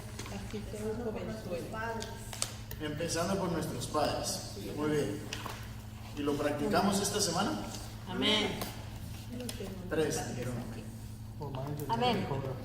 que un jovenzuelo. Empezando por nuestros padres. Muy bien. ¿Y lo practicamos esta semana? Amén. 3 dijeron amén. Amén.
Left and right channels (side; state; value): both; identical; correlation 1.00